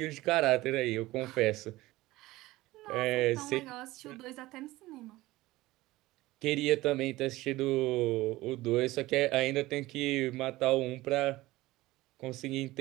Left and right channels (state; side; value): quieter; left; 18.4 dB